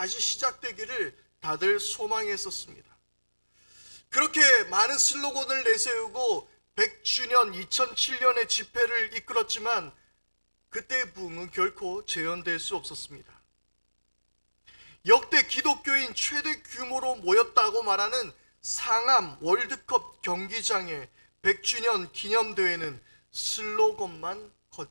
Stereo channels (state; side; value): inverted; both; correlation -1.00